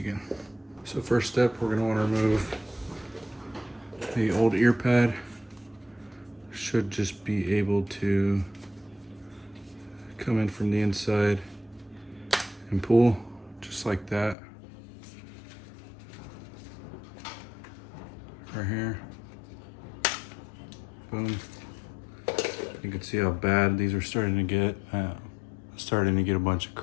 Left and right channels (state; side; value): drops out; right; at 14.4 s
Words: So first step, we're gonna wanna remove the old ear pad. Should just be able to come in from the inside and pull, just like that. Right here, boom. You can see how bad these are starting to get. Starting to get a bunch of